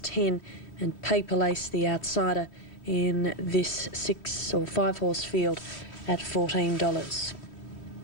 and Paper Lace, the outsider, in this 6 or 5 horse field at $14.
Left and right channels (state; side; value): late; right; 2.9 ms